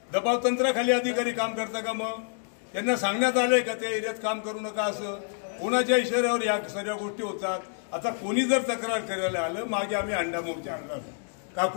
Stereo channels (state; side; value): silent; right; 59 dB below the other